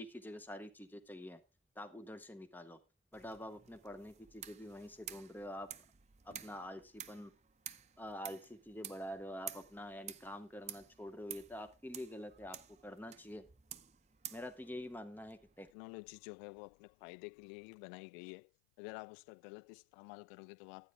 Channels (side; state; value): right; drops out; at 15.8 s